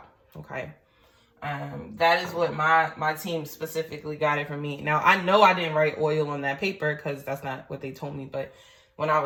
Okay. That is what my team specifically got it for me. Now, I know I didn't write oil on that paper because that's not what they told me. But when I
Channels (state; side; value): identical; both; correlation 1.00